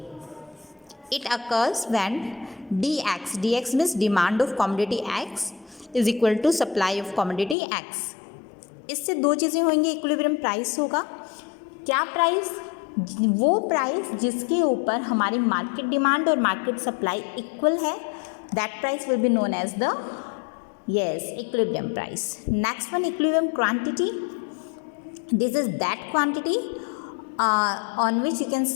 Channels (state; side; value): drops out; right; at 7.6 s